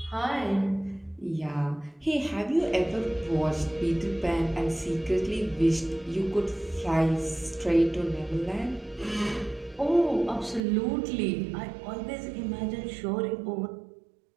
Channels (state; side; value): drops out; left; at 10.6 s